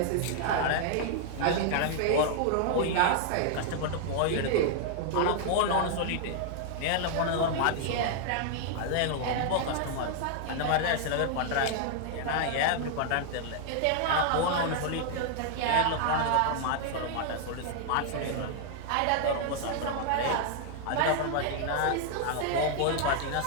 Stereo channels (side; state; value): both; different; correlation 0.00